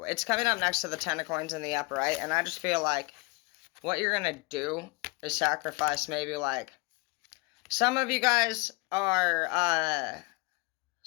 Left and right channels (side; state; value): right; quieter; 26.3 dB